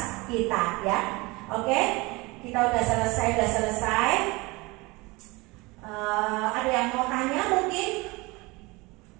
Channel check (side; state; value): left; quieter; 24.0 dB